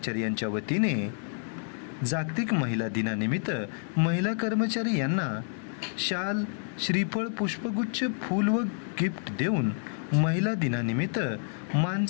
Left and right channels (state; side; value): silent; right; 59 dB below the other